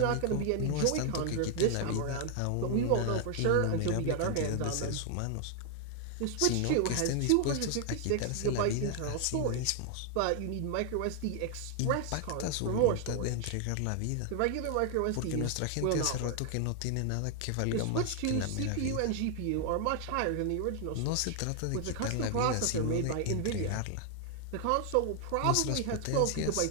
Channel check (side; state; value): both; different; correlation 0.00